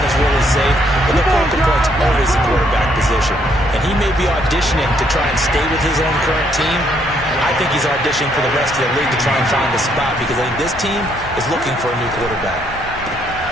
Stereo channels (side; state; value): both; normal; correlation 0.70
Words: is really safe, but the focal point's always the quarterback position. And he may be auditioning to try and stay with his own current team. I think he's auditioning for the rest of the league to try and find a spot, because I think this team is looking for a new quarterback.